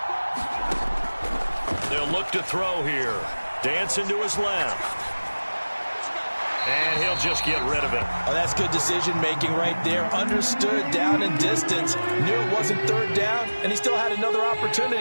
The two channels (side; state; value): both; inverted; correlation -1.00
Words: They'll look to throw here. Dancing to his left. And he'll just get rid of it. Oh, that's good decision-making right there. Understood down and distance. Knew it wasn't third down, and he still had another